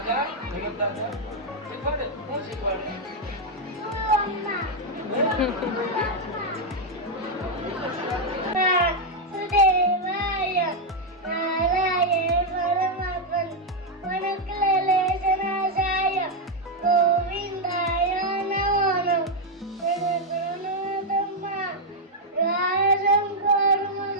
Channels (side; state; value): both; normal; correlation 0.00